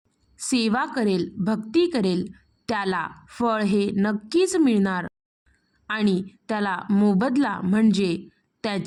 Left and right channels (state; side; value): identical; both; correlation 1.00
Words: सेवा करेल, भक्ती करेल, त्याला फळ हे नक्कीच मिळणार आणि त्याला मोबदला म्हणजे